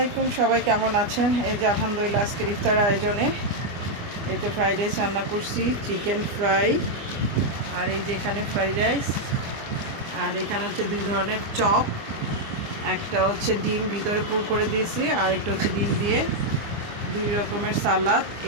সবাই কেমন আছেন? এই যে আলহামদুলিল্লাহ আজকের ইফতার আয়োজনে এই যে ফ্রাইড রাইস রান্না করছি, চিকেন ফ্রাই, আর এই যে এখানে ফ্রাইড রাইস, আর এখানে হচ্ছে দুই ধরনের চপ, একটা হচ্ছে ডিম ভিতরে পুর করে দিয়েছি, আর একটা হচ্ছে ডিম দিয়ে দুই রকমের সালাদ।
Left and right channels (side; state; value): left; late; 24 ms